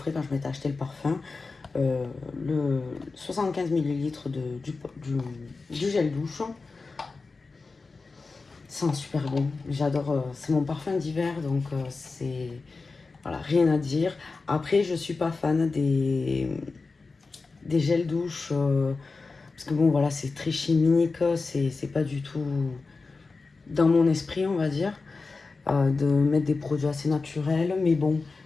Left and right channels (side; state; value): right; quieter; 4.0 dB